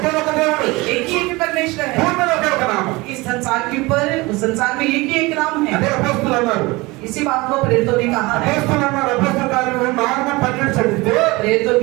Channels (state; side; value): quieter; left; 22.9 dB